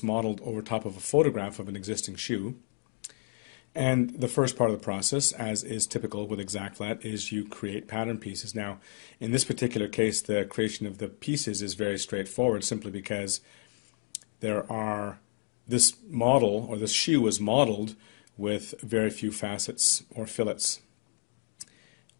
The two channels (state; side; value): silent; right; 57 dB below the other